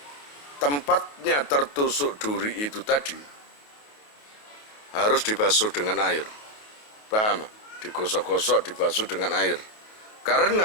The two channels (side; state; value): right; late; 28 ms